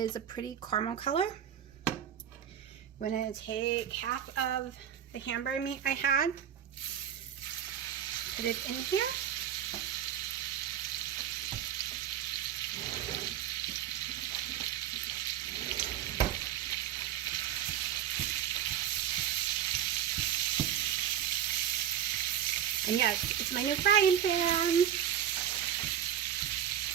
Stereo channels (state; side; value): quieter; left; 10.0 dB